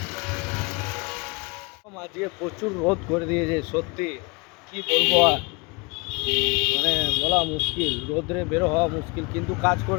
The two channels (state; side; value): quieter; right; 28.5 dB